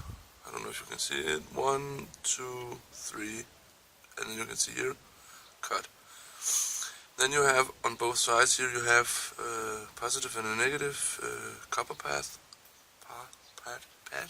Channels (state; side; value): identical; both; correlation 1.00